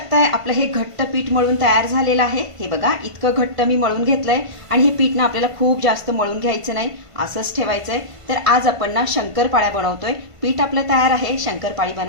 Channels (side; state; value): left; late; 1.5 ms